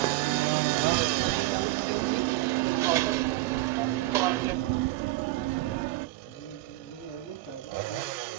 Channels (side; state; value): left; quieter; 18.1 dB